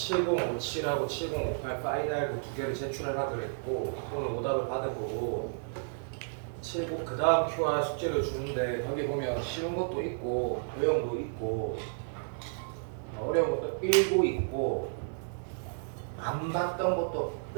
7058 파이널 그 두 개를 제출하라 그랬고 오늘 오답을 받아보고 70 그 다음 QR 숙제를 주는데 거기 보면 쉬운 것도 있고 어려운 것도 있고 어려운 것도 일부 있고 안 봤던 것도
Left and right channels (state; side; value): silent; left; digital silence